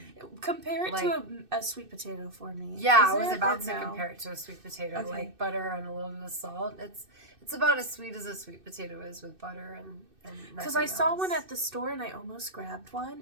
Compare it to a sweet potato for me. Yeah, I was about to compare it to a sweet potato, like butter and a little bit of salt. It's about as sweet as a sweet potato is with butter and because I saw one at the store and I almost grabbed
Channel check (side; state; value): left; late; 2.6 ms